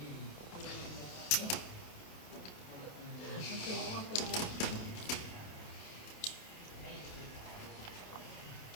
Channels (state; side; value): late; right; 27 ms